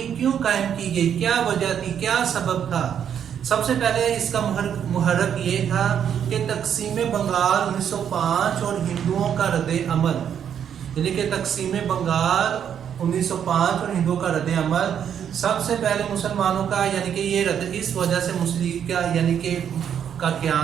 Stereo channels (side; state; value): left; quieter; 8.7 dB